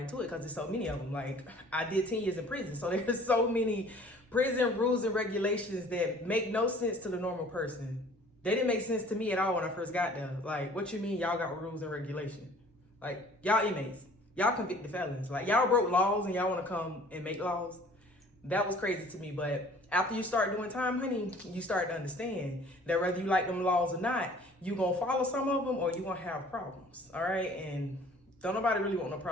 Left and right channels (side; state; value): both; normal; correlation 0.52